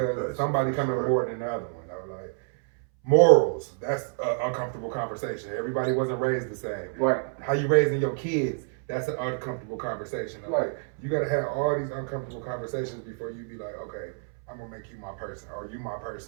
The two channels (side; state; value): left; silent; 59 dB below the other